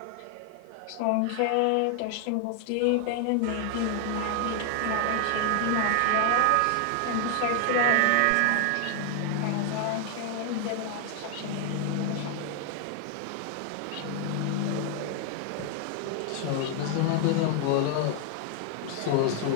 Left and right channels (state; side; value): different; both; correlation 0.00